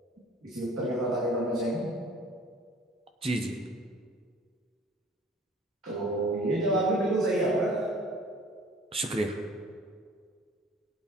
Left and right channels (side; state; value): both; normal; correlation 0.49